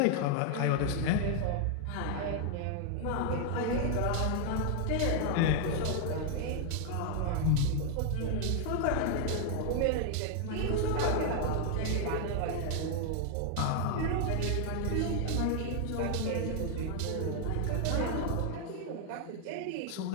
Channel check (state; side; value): different; both; correlation 0.00